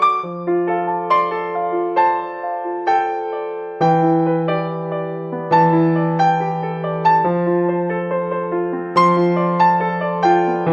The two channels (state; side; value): identical; both; correlation 1.00